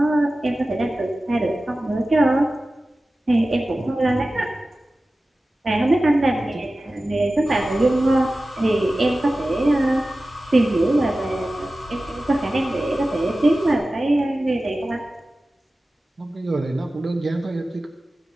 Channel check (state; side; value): normal; both; correlation 0.96